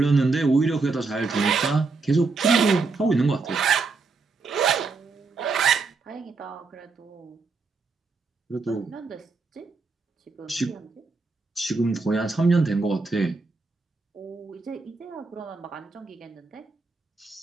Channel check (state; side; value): quieter; left; 4.1 dB